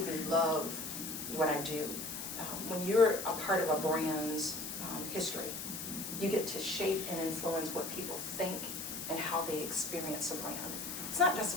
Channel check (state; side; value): noise; left; hiss, 6 dB below the sound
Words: love what I do. When you're a part of a brand's history, you get to shape and influence what people think and how they experience a brand. It's not just